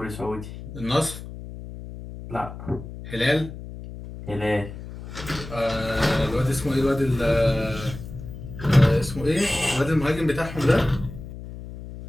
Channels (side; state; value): left; noise; hum, 12 dB below the sound